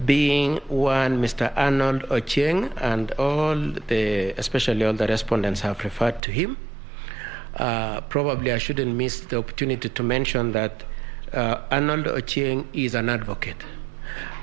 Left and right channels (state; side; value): drops out; left; at 6.2 s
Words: being one Mr. Arnold Ochieng, and especially all the respondents have referred to him. Probably I shouldn't miss the opportunity to mention that Arnold Ochieng is an advocate.